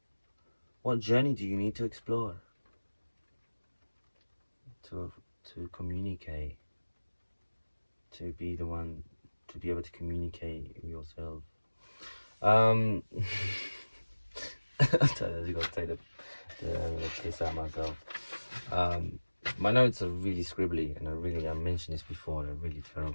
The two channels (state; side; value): inverted; both; correlation -1.00